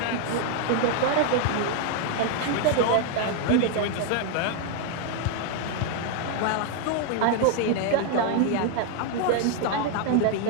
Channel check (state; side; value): different; both; correlation 0.00